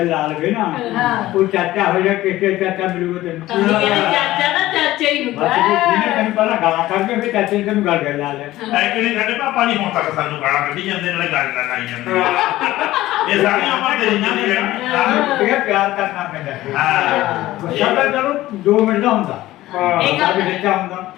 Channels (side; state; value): right; quieter; 16.1 dB